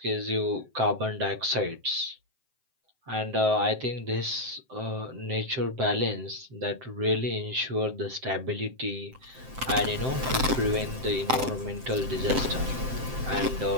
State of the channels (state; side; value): late; left; 7.7 ms